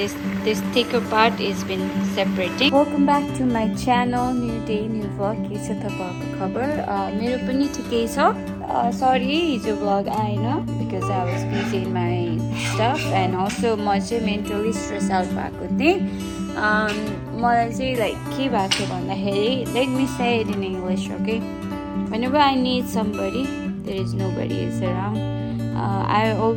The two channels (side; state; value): both; identical; correlation 1.00